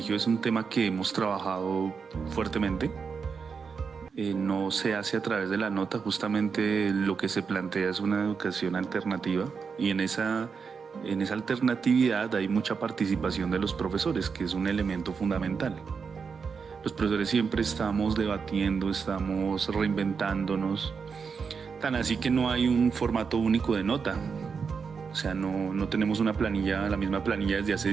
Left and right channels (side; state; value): left; quieter; 5.7 dB